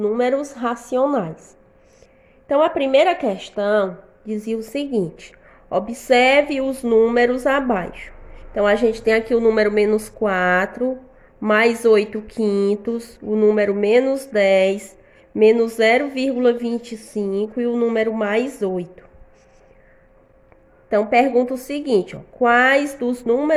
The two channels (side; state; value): both; identical; correlation 1.00